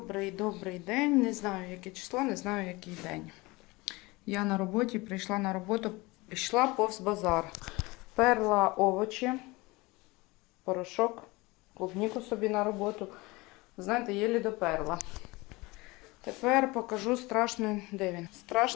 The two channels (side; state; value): right; quieter; 23.2 dB